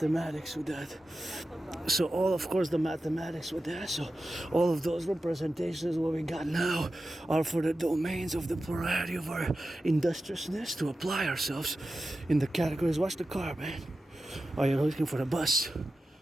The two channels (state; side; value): normal; both; correlation 0.92